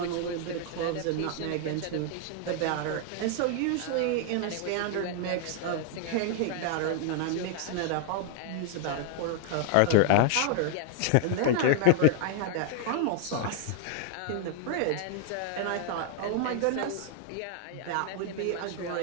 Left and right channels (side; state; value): both; different; correlation 0.00